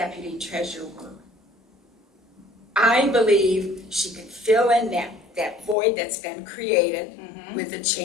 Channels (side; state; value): right; drops out; at 5.8 s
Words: treasurer work. I believe she could fill in that void that's been created with the